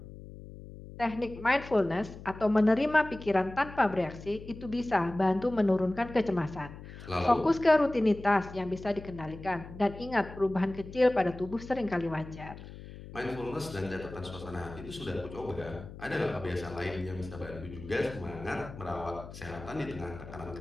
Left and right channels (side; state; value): left; noise; hum, 14 dB below the sound